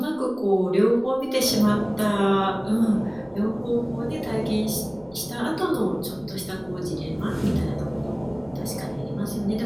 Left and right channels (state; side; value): noise; left; rumble, 27 dB below the sound